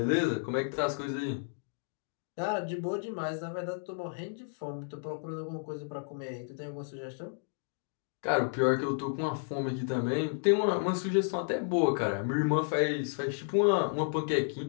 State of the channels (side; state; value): right; silent; digital silence